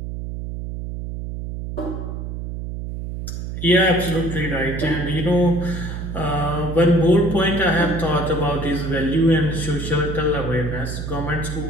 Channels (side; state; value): right; noise; hum, 6 dB below the sound